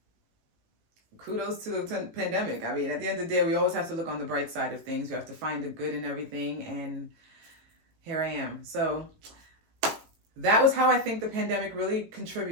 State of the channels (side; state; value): left; late; 18 ms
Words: kudos to the pandemic. I mean, at the end of the day, we always have to look on the bright side of things. We have to find the good in everything, and here I am. So that was how I think the pandemic really